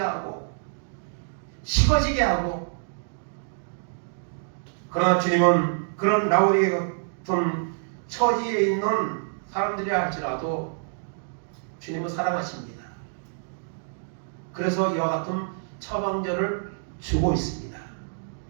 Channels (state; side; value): silent; left; digital silence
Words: 식어지게 하고 그러나 주님은 그런 라오디게 같은 처지에 있는 사람들이라 할지라도 주님은 사랑하십니다. 그래서 이와 같은 처방전을 주고 있습니다.